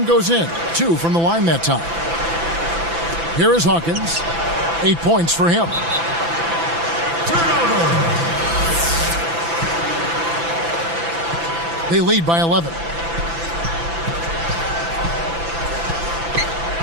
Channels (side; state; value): left; late; 6.0 ms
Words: goes in. 2 from the line that time. Here is Hawkins. 8 points for him. They lead by 11.